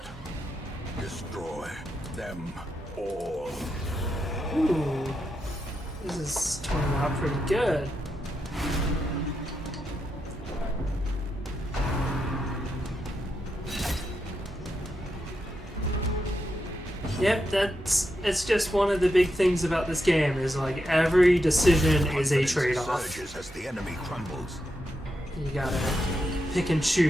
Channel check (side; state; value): both; normal; correlation 0.85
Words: Destroy them all. Ooh, this is turning out pretty good. Yep, it's just one of the big things about this game is like every decision is a Confidence trade-off. surges as the enemy crumbles. You gotta pick and